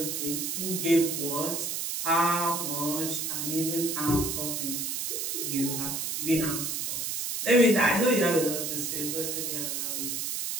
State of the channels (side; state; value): right; noise; hiss, 2 dB below the sound